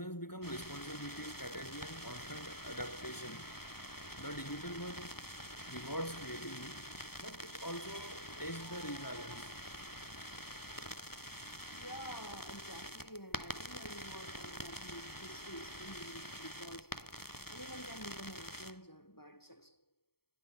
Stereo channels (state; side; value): late; right; 0.95 ms